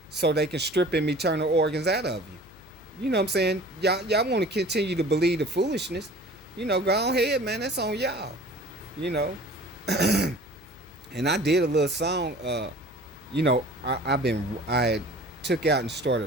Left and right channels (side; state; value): left; noise; hum, 23 dB below the sound